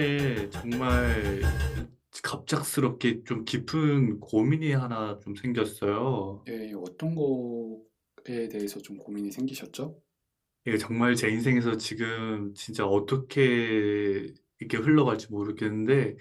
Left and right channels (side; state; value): both; identical; correlation 1.00